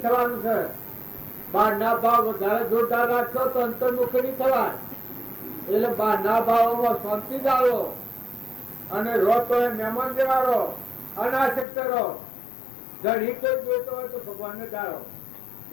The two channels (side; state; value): right; drops out; at 11.7 s